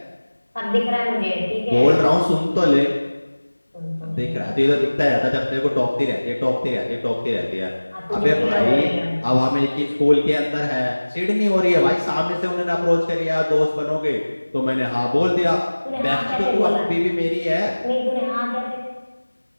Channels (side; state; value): both; inverted; correlation -1.00